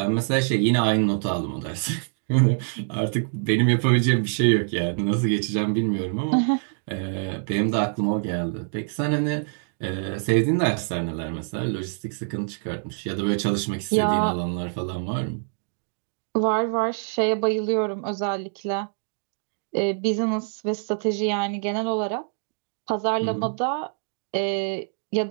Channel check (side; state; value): left; silent; 62 dB below the other